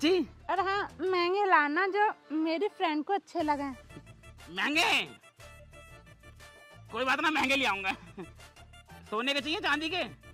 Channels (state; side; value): identical; both; correlation 1.00